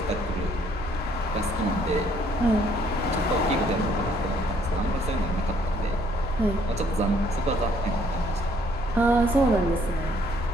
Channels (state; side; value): normal; both; correlation 0.65